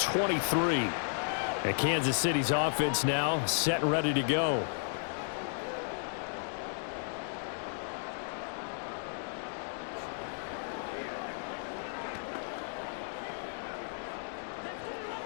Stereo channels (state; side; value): silent; right; digital silence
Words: And Kansas City's offense now set and ready to go.